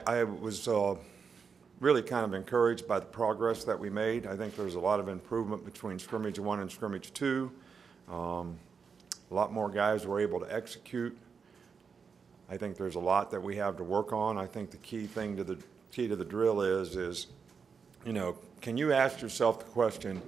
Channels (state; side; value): quieter; left; 5.8 dB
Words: was really kind of encouraged by the progress that we made. I think there's a lot of improvement between scrimmage 1 and scrimmage 2. A lot more guys were able to execute. I think there's a lot that we have to work on. I think the key to the drill is, you know, can you ask yourself the question,